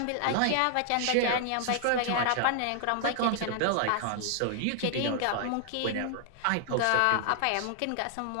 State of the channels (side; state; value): both; different; correlation 0.00